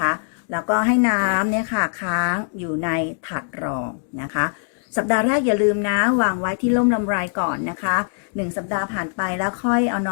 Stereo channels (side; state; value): right; silent; digital silence